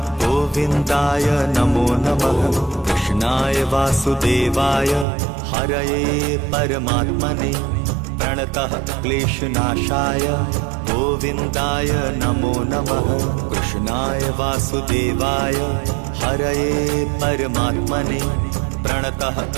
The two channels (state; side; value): drops out; left; at 5.1 s